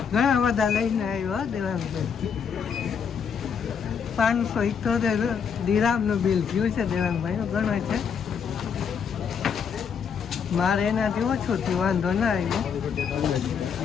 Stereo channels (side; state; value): right; quieter; 6.9 dB